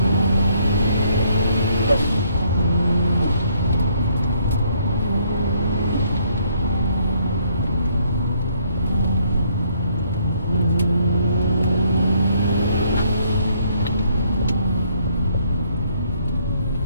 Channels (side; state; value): both; inverted; correlation -0.67